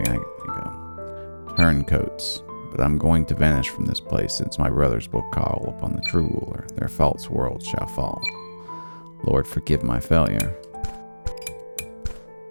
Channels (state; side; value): inverted; both; correlation -1.00